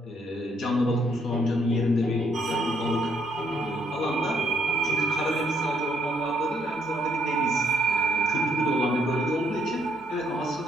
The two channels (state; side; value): normal; both; correlation 0.71